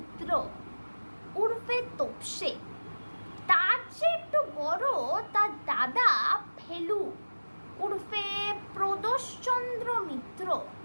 উর্ফে তোপসে। তার চেয়ে একটু বড় তার দাদা ফেলু উর্ফে প্রদোষচন্দ্র মিত্র।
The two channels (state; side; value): inverted; both; correlation -1.00